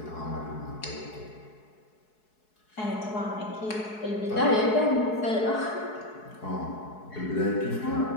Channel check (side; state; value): right; late; 4.7 ms